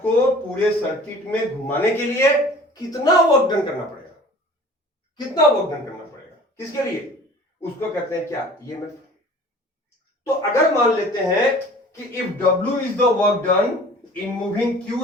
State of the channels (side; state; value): both; normal; correlation 0.46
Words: को पूरे सर्किट में घुमाने के लिए कितना वर्क डन करना पड़ेगा? कितना वर्क डन करना पड़ेगा? किसके लिए? उसको कहते हैं क्या? ईएमएफ। तो अगर मान लेते हैं कि if W is the work done in moving